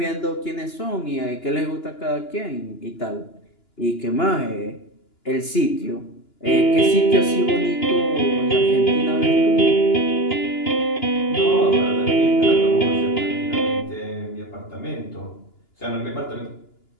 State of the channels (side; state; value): right; late; 2.9 ms